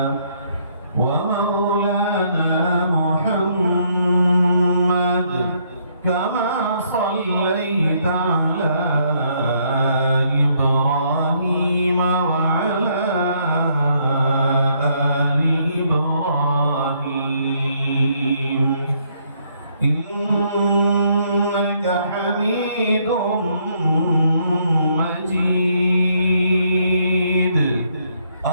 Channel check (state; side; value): inverted; both; correlation -0.70